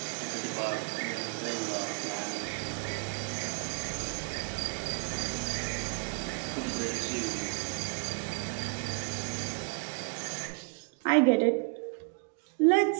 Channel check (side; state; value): left; quieter; 37.8 dB